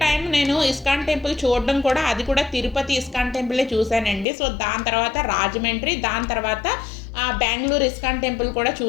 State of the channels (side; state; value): right; drops out; at 4.2 s